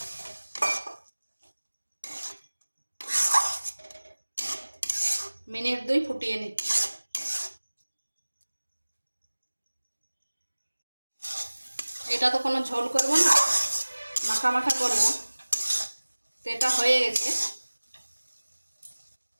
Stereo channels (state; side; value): inverted; both; correlation -1.00